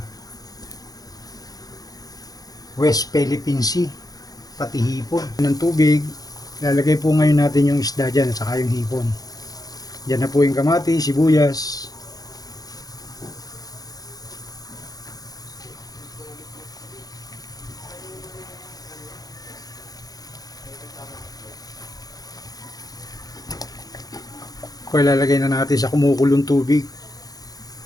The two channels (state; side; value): late; right; 0.18 ms